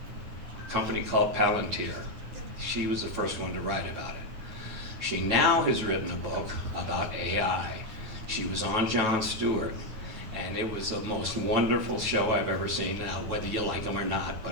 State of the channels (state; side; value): late; left; 9.4 ms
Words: A company called Palantir. She was the first one to write about it. She now has written a book about AI. She was on Jon Stewart, and it was the most wonderful show I've ever seen, now whether you like them or not,